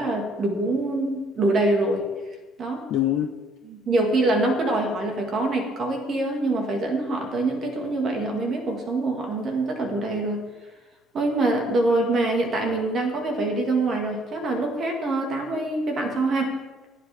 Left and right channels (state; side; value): normal; both; correlation 0.64